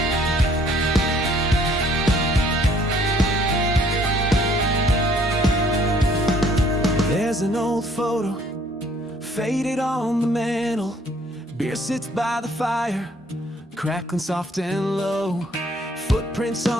There's an old photo, faded on the mantle. Beer sits by the fire, crackling soft and low. Footprints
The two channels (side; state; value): both; normal; correlation 0.61